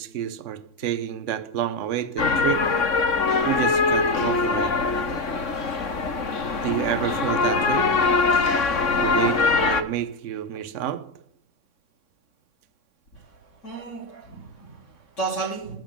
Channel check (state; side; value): late; right; 3.6 ms